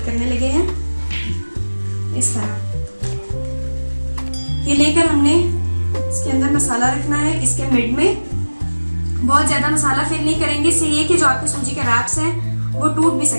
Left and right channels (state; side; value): inverted; both; correlation -1.00